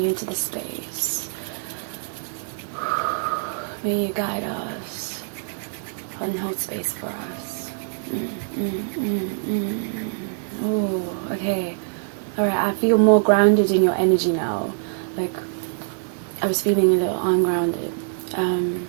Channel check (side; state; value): left; silent; digital silence